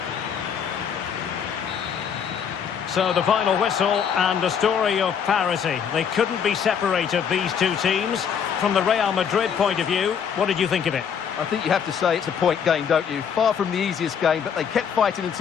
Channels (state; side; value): quieter; right; 7.5 dB